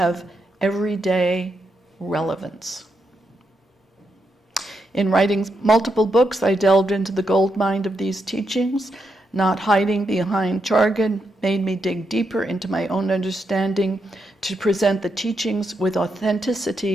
everyday relevance. In writing multiple books, I delved into the goldmine of these teachings. Not hiding behind jargon made me dig deeper into my own understanding to present the teachings with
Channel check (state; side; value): normal; both; correlation 0.82